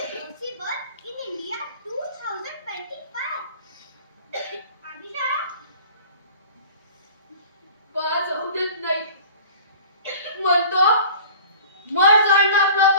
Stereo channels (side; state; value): both; inverted; correlation -0.44